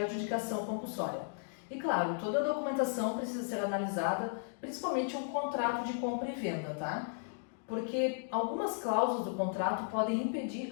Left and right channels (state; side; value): silent; right; digital silence